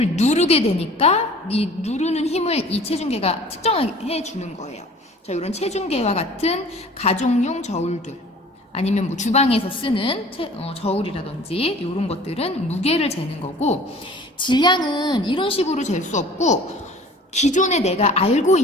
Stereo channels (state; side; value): normal; both; correlation 0.47